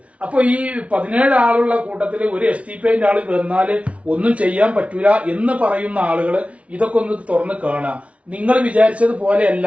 അപ്പൊ ഈ 17 ആളുള്ള കൂട്ടത്തിൽ ഒരു STPIന്റെ ആള് വന്നാല് ഒന്നും ചെയ്യാൻ പറ്റൂല എന്ന് പറയുന്ന ആളുകൾ ഇതൊക്കെ ഒന്ന് തുറന്ന് കാണുക. നിങ്ങൾ വിചാരിച്ചത് പോലെയല്ല.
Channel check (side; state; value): left; late; 0.063 ms